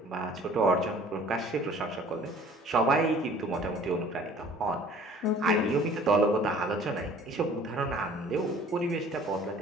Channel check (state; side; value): normal; both; correlation 0.51